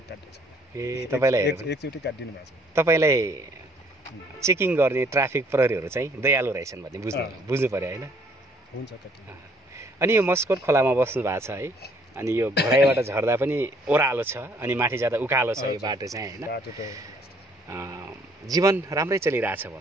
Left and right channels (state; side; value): normal; both; correlation 0.63